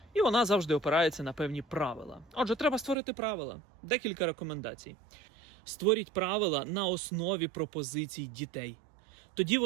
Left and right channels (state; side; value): drops out; left; at 3.0 s